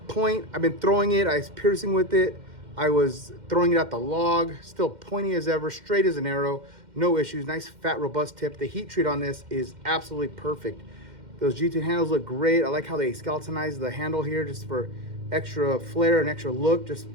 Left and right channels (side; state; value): left; late; 2.1 ms